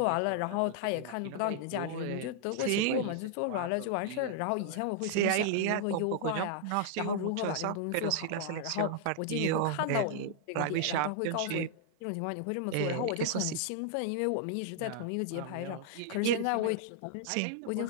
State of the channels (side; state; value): both; different; correlation -0.01